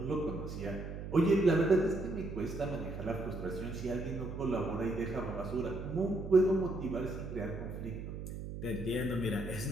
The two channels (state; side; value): noise; right; hum, 8 dB below the sound